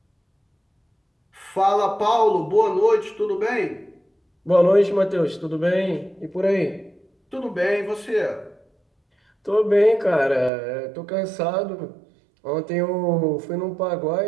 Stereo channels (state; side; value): drops out; left; at 10.5 s